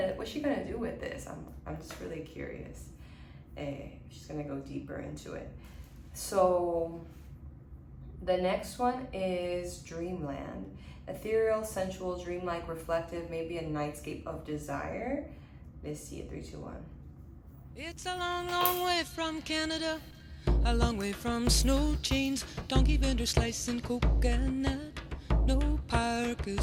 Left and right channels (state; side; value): identical; both; correlation 1.00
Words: do with this? I'm just really curious. She's gonna go deeper into it. So the next one is Dreamland. Ethereal, sensual, dreamlike, reflective, maybe a nightscape of desire. Let's see it. 3, 2, 1. It's a long, long way from Canada, a long way from snow chains, donkey vendors slicing coconut. No